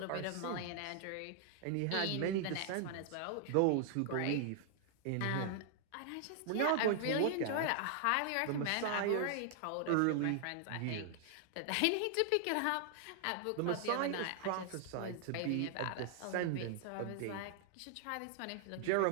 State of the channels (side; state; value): both; different; correlation 0.00